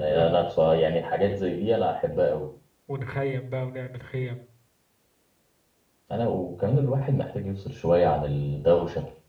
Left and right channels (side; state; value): both; identical; correlation 1.00